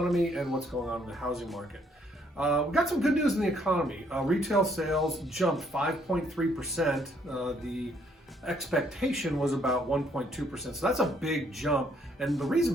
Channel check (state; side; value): normal; both; correlation 0.68